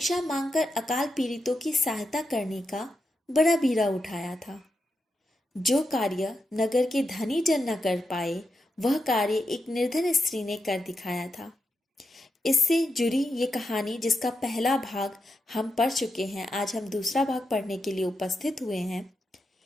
मांगकर अकाल पीड़ितों की सहायता करने का बड़ा बीड़ा उठाया था। जो कार्य नगर के धनी जन न कर पाए, वह कार्य एक निर्धन स्त्री ने कर दिखाया था। इससे जुड़ी ये कहानी, जिसका पहला भाग हम पढ़ चुके हैं, आज हम दूसरा भाग पढ़ने के लिए उपस्थित हुए हैं।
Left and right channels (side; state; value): both; normal; correlation 0.86